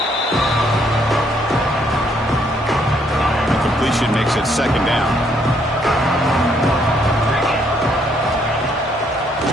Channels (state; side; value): normal; both; correlation 0.70